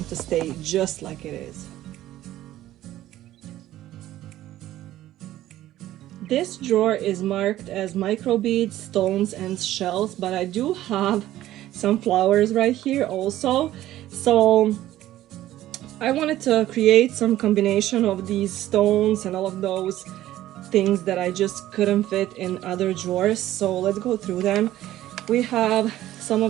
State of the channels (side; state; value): left; quieter; 14.2 dB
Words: to stay just like it is. This drawer is marked as microbeads, stones, and shells, but I do have some flowers right here also. So I wanted to create some combination of these stones and all of those things that I just couldn't fit in other drawers. So let's go through them. We have some